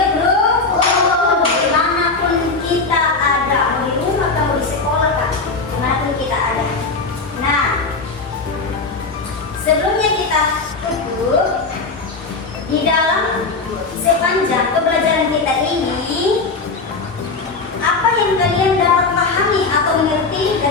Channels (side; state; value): right; quieter; 4.0 dB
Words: rukun dimanapun kita ada, mau di rumah atau di sekolah kan, dimanapun kita ada. Nah, sebelumnya kita tutup. Di dalam sepanjang pembelajaran kita ini, apa yang kalian dapat pahami atau mengerti